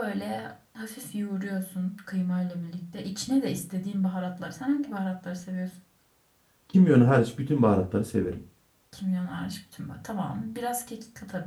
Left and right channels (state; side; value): identical; both; correlation 1.00